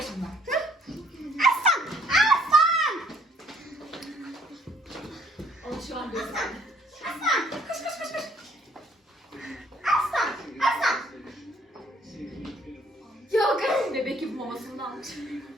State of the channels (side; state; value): both; normal; correlation 0.62